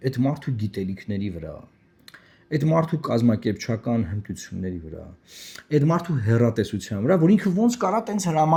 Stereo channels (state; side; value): identical; both; correlation 1.00